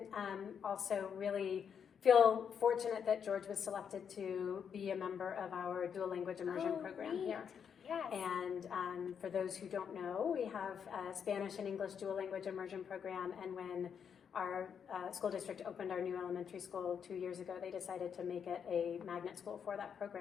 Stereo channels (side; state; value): right; quieter; 7.4 dB